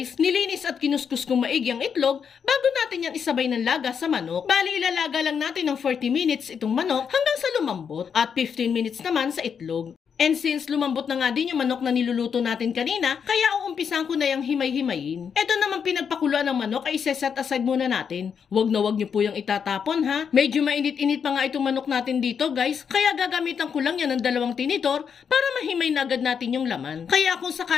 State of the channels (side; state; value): right; quieter; 7.0 dB